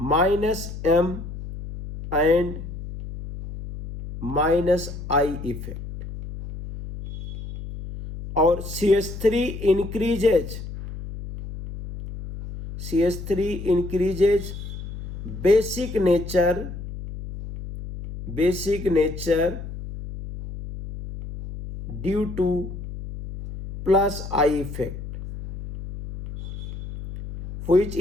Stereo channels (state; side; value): noise; left; hum, 10 dB below the sound